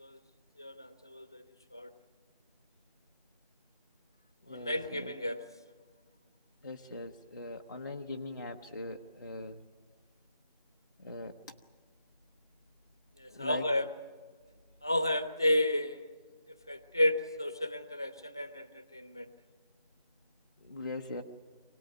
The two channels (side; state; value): both; inverted; correlation -0.84